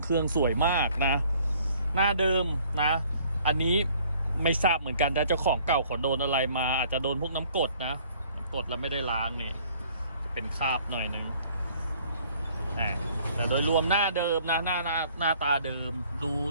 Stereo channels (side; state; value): both; inverted; correlation -0.58